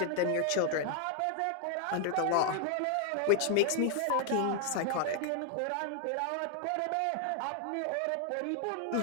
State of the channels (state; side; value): different; both; correlation 0.00